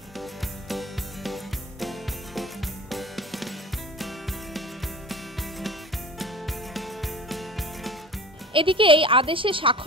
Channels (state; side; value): normal; both; correlation 0.39